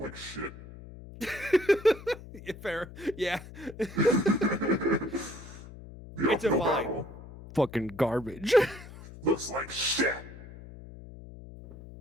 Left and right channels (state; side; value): noise; left; hum, 16 dB below the sound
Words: shit. Yeah, fair. Yeah. The It's a uphill vibe. battle Fucking garbage. looks like shit.